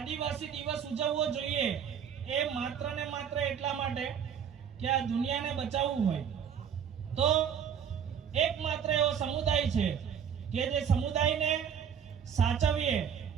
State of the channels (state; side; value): quieter; left; 8.0 dB